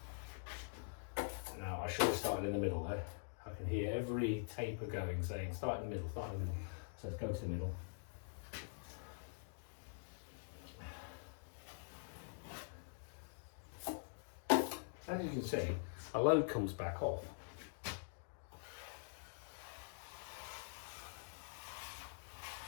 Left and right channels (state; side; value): silent; right; digital silence